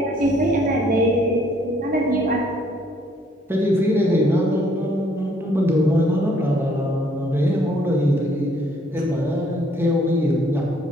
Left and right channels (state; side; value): normal; both; correlation 0.65